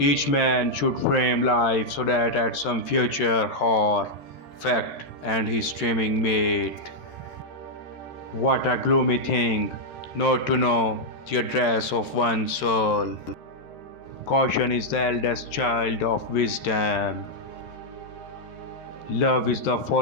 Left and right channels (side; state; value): right; late; 13 ms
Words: man should frame life so that at some future hour, fact and his streaming mate. What a gloomy thing, not to know the address of one's soul. Caution is the eldest child of wisdom. Love is the